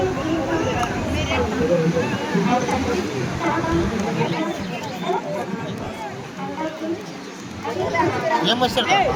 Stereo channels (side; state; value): both; identical; correlation 1.00